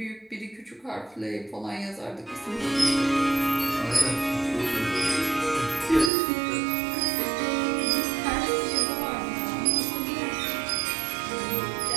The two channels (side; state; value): left; drops out; at 6.1 s